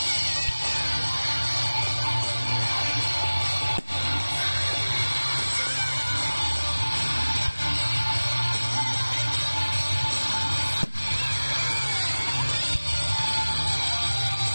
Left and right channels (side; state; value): both; inverted; correlation -1.00